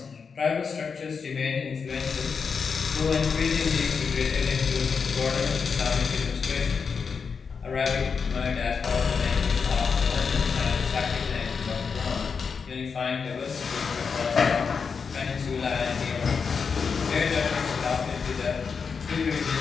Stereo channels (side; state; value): right; quieter; 5.7 dB